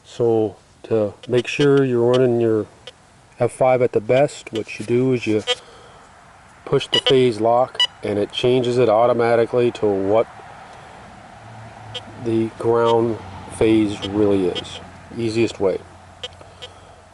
So to make sure you're running your F5 at the best, what you do is you push the phase lock and it changes it automatically to what the ground phase really is. Easiest way.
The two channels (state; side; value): identical; both; correlation 1.00